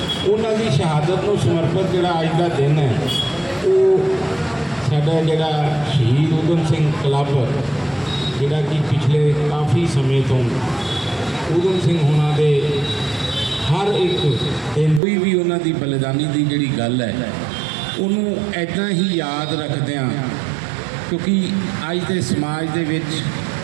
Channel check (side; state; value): left; drops out; at 15.0 s